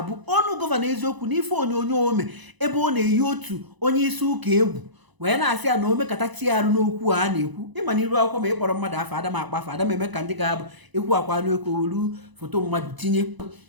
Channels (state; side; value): late; left; 1.0 ms